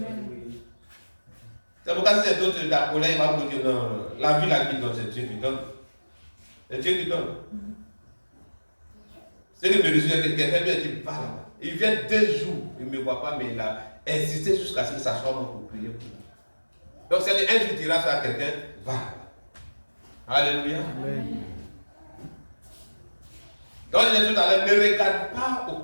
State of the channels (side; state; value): both; inverted; correlation -1.00